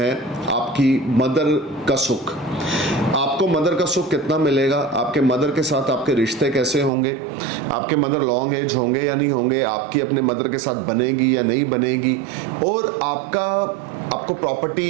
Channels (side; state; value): left; drops out; at 6.9 s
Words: आपकी मदर का सुख। आपको मदर का सुख कितना मिलेगा, आपके मदर के साथ आपके रिश्ते कैसे होंगे, आपके मदर लॉन्ग एज होंगे या नहीं होंगे, आपकी अपने मदर के साथ बनेगी या नहीं बनेगी, और आपको